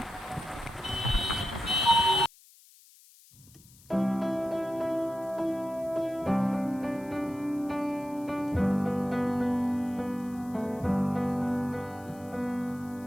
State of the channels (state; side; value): noise; left; hiss, 25 dB below the sound